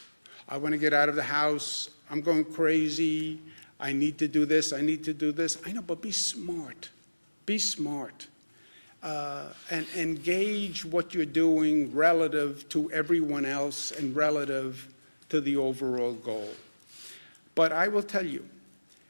I want to get out of the house. I'm going crazy. I need to do this. I need to do this. I know, but be smart. Be smart. And engage what you're doing relative to everyone else and relative to the overall goal. But I will tell you,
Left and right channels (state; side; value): inverted; both; correlation -1.00